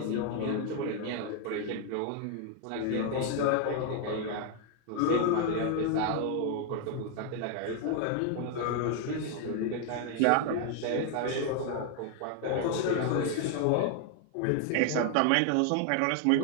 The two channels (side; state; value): both; different; correlation 0.00